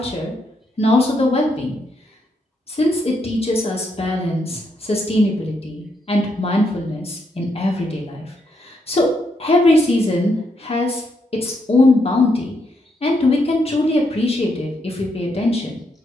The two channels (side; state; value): both; normal; correlation 0.78